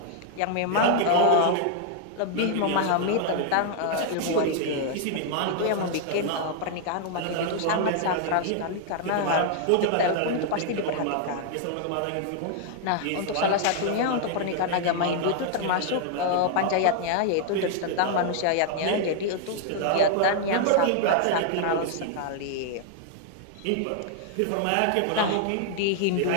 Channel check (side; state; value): both; different; correlation 0.00